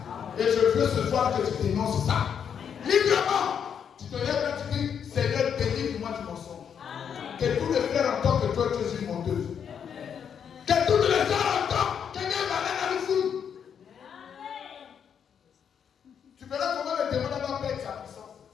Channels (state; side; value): quieter; right; 7.8 dB